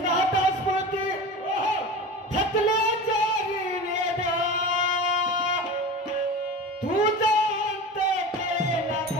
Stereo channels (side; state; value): both; normal; correlation 0.31